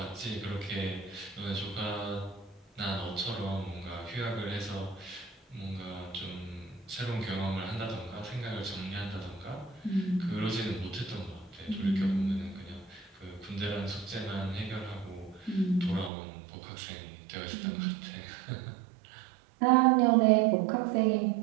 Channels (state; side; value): drops out; left; at 16.1 s